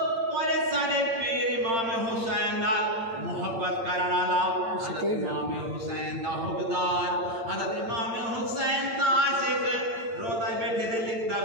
सारे पीर इमाम हुसैन नाल मोहब्बत करने वाला हज़रत इमाम हुसैन दा हुबदार हज़रत इमाम हुसैन दा आशिक रोदा बैठे थे लिखता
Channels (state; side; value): late; left; 8.8 ms